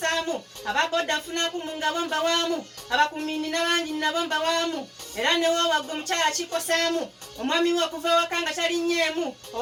ababoda nfunaku mu ngabo mbawaamu abakumini n'abangi nabo mbawaamu era newo wagwe omukyala kikosaamu omwami we okuva ewaka nga talinyemu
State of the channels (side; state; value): both; identical; correlation 1.00